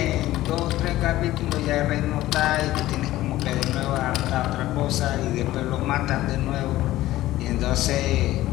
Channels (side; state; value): right; quieter; 15.7 dB